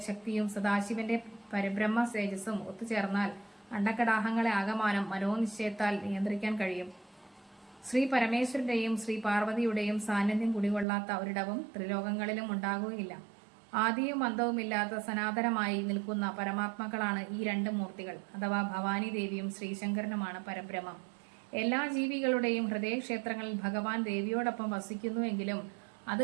ശക്തിയും സദാശിവന്റെ പരബ്രഹ്മ തേജസ്സും ഒത്തുചേർന്നാൽ അണ്ടകടാഹങ്ങളെ ആകമാനം മനോനിശ്ചയത്താൽ നിയന്ത്രിക്കാൻ കഴിയും. ശ്രീ പരമേശ്വരന്റെയും ശ്രീ പാർവതിയുടെയും സാന്നിധ്യം കുടികൊള്ളാത്ത ഒരിടവും ത്രിലോകങ്ങളിലും ഉണ്ടാകുകയില്ല. ആദിയും അന്തവുമില്ലാത്ത സനാതനമായി നിൽക്കുന്ന പരമാത്മാക്കളാണ് ഈ രണ്ട് മൂർത്തികൾ, അഥവാ ഭവാനി ദേവിയും ശ്രീശങ്കരനുമാണ് പരബ്രഹ്മം. എല്ലാ ജീവികളുടെയും ഹൃദയക്ഷേത്രങ്ങളിൽ ഭഗവാൻ ദേവിയോടൊപ്പം വസിക്കുന്നുവെങ്കിലും അത്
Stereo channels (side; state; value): left; drops out; at 10.9 s